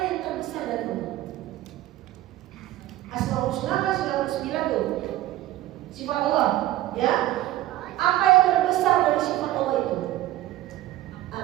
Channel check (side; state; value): left; quieter; 15.2 dB